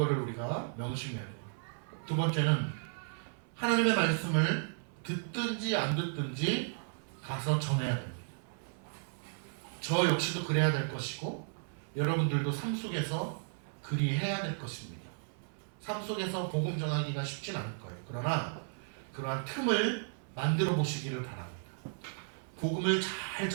우리가 명심해야 돼요. 두 번째는 하나님의 말씀을 듣든지 안 듣든지 가서 전해야 됩니다. 저 역시도 그래야 될 것이고 여러분들도 삶 속에서 그리해야 될 것입니다. 삶 속에서 복음 전하기가 쉽진 않을 거예요. 그러나 그러한 틈을 만들어 보시기를 바랍니다. 복음을 잘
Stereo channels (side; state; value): left; silent; 55 dB below the other